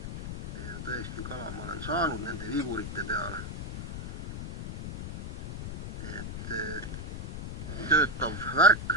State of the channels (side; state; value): left; noise; rumble, 6 dB below the sound